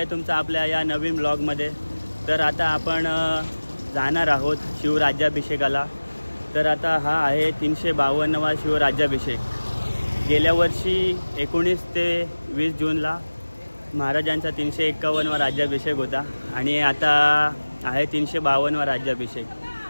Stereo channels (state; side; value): inverted; both; correlation -1.00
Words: तुमचं आपल्या या नवीन ब्लॉगमध्ये। तर आता आपण जाणार आहोत शिवराज्याभिषेकाला। तर आता हा आहे 352वा शिवराज्याभिषेक। गेल्या वर्षी 19 ते 20 जूनला महाराजांचा 351वा राज्याभिषेक होता आणि आता आहे 352वा राज्याभिषेक।